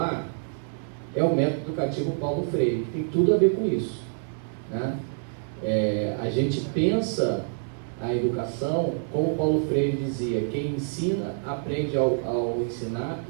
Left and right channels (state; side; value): silent; left; digital silence